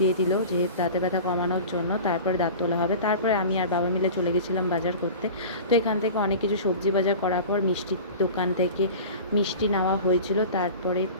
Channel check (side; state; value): both; inverted; correlation -0.36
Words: দিল যে দাঁতে ব্যথা কমানোর জন্য। তারপরে দাঁত তোলা হবে। তারপরে আমি আর বাবা মিলে চলে গেছিলাম বাজার করতে। তো এখান থেকে অনেক কিছু সবজি বাজার করার পর মিষ্টির দোকান থেকে মিষ্টি নেওয়া হয়েছিল। তারপরে